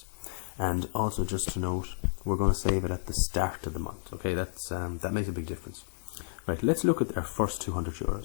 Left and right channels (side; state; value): right; silent; digital silence